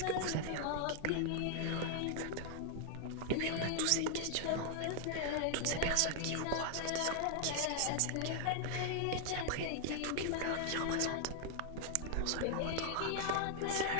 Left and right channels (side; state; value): both; different; correlation 0.00